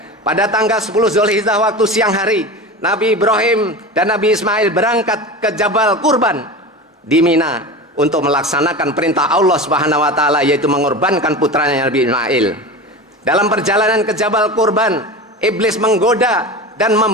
pada tanggal 10 Zulhijjah waktu siang hari, Nabi Ibrahim dan Nabi Ismail berangkat ke Jabal Kurban di Mina untuk melaksanakan perintah Allah Subhanahu wa taala, yaitu mengorbankan putranya Nabi Ismail. Dalam perjalanan ke Jabal Kurban, iblis menggoda dan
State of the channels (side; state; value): both; normal; correlation 0.29